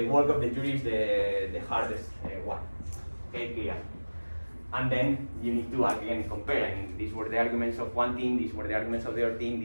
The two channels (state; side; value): inverted; both; correlation -1.00